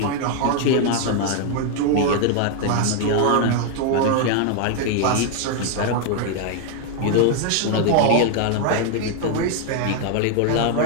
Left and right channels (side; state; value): both; different; correlation 0.00